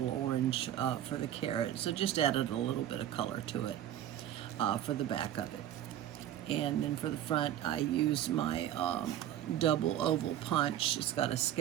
orange for the carrot. So just added a little bit of color to it for the back of it. And then for the front, I used my double oval punch. It's got a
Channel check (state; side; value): quieter; left; 11.6 dB